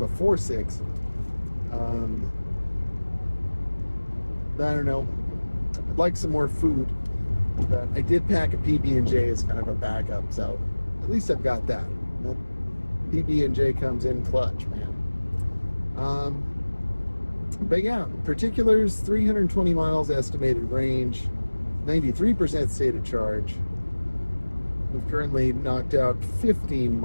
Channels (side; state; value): both; inverted; correlation -1.00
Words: 6. I don't know. I'd like some more food, but I did pack a PB&J as kind of a backup, so at least I've got that. PB&J comes in clutch, man. But yeah, particulars, 320 miles estimated range, 93% state of charge. We've currently knocked out 15